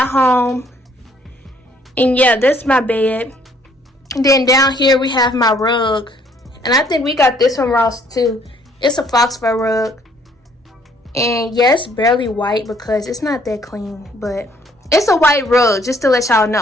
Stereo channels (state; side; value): normal; both; correlation 0.63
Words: Home. And yeah, that's my bed. And then down here we have my rug. And I think we got this from Ross too. It's a fox fur rug. And yeah, it's barely white because it's not that clean. But it's a white rug, just to let y'all